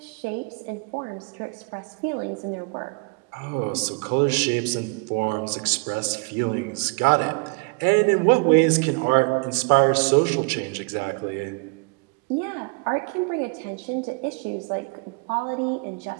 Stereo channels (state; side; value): quieter; left; 32.6 dB